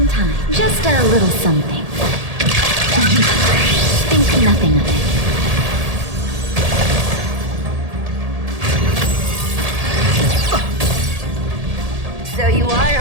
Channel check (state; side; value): late; left; 1.7 ms